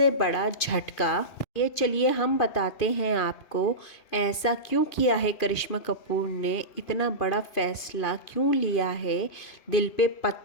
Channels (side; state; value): right; late; 2.5 ms